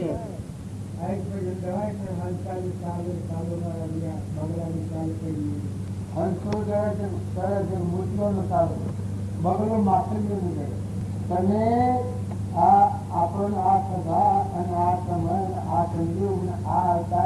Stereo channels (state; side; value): identical; both; correlation 1.00